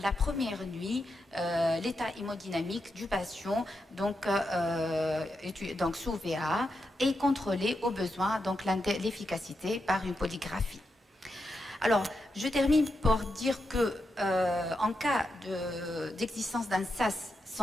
première nuit l'état hémodynamique du patient, donc sous VA, et contrôler au besoin donc l'efficacité par une polygraphie. Alors, je termine pour dire que en cas d'existence d'un SAS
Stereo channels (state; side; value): normal; both; correlation 0.86